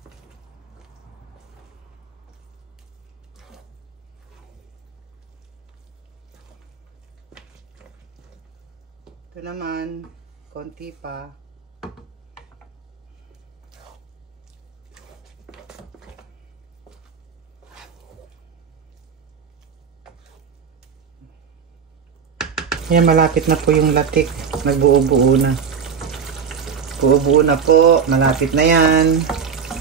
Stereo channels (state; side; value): quieter; left; 6.6 dB